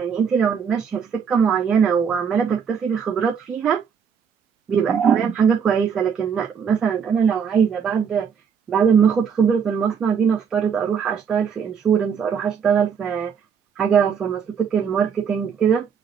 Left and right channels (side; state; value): left; quieter; 6.9 dB